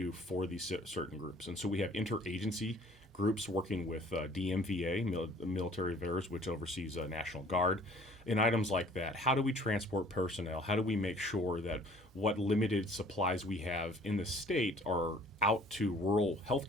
for these certain groups? And so we have interagency groups working with DMVA, Military Affairs, which oversees National Guard, and items like that. How do we transport personnel? How do we make sure that what limited supplies we have in the state are out to rural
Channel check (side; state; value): both; normal; correlation 0.53